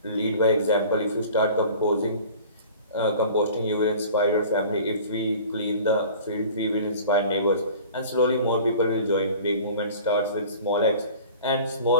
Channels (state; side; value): inverted; both; correlation -0.44